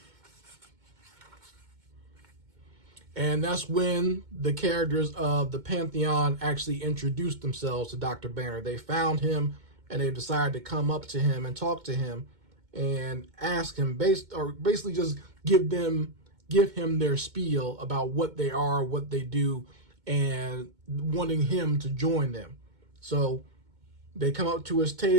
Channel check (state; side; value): late; left; 2.2 ms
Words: And that's when the characters of the Pantheon actually introduced themselves to Dr. Banner. They found him, and they decided to come up to him and talk to him and ask him, basically just give him their spiel about what they are, what they do, and wanting him to join them. So they come up to his